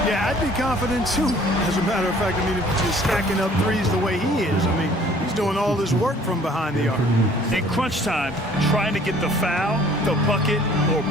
Yeah, I'd be confident too. As a matter of fact, I mean, if you're stacking up threes the way he is, I mean, he's doing all this work from behind the arc. In crunch time, trying to get the foul, the bucket, or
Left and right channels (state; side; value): normal; both; correlation 0.55